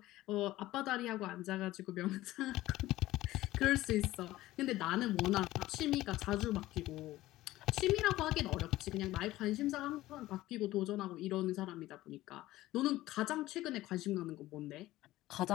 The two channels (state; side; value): quieter; right; 16.5 dB